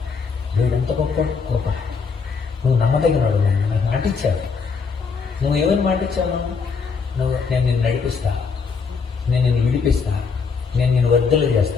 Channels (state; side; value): quieter; right; 5.3 dB